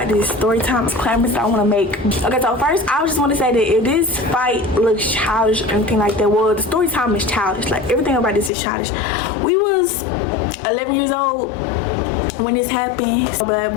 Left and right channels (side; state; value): right; drops out; at 8.5 s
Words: this story time disclaimers that I want to make. Okay, so first, I just want to say that if this fight looks childish or anything like that, well, the story time is childish. Like, everything about this is childish. We was 11 years old when this happened. So bad